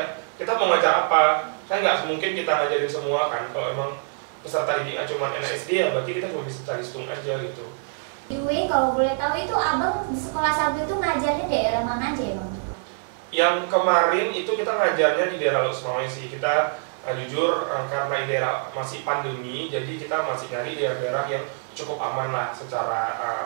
kita mau ngajar apa. Kan nggak mungkin kita ngajarin semua kan. Kalau emang peserta didiknya cuma anak SD ya berarti kita cuma bisa calistung aja gitu. Anyway, kalau boleh tahu itu abang di sekolah Sagu itu ngajarnya daerah mana aja ya bang? Yang kemarin itu kita ngajarnya di daerah Losmawe sih. Kita jujur karena di daerah masih pandemi, jadi kita masih nyari daerah-daerah yang cukup aman lah secara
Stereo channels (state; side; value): silent; left; digital silence